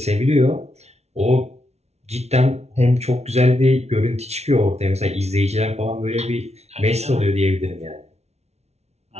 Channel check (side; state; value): left; late; 0.31 ms